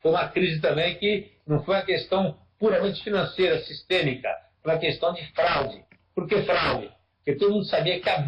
foi uma crise também que não foi uma questão puramente financeira, sistêmica, foi uma questão de fraude. Por que fraude? Porque todo mundo sabia que a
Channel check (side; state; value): both; identical; correlation 1.00